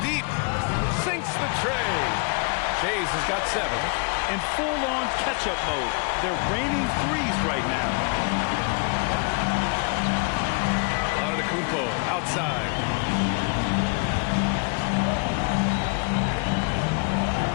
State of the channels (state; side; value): quieter; right; 35.9 dB